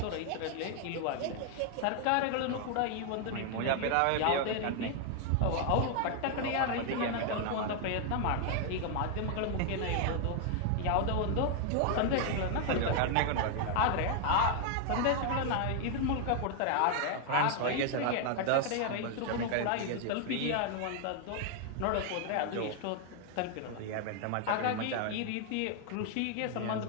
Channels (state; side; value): different; both; correlation 0.00